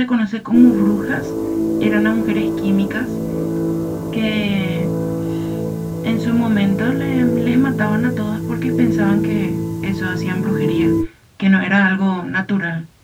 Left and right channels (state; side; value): identical; both; correlation 1.00